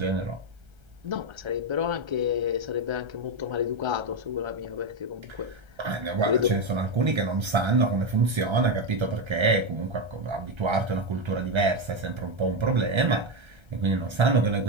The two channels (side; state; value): left; late; 1.3 ms